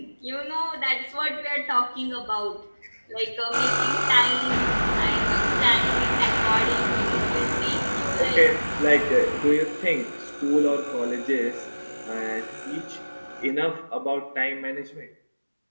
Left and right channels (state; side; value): inverted; both; correlation -1.00